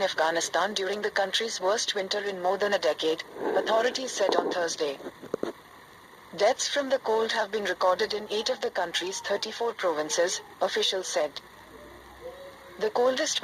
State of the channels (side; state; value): both; identical; correlation 1.00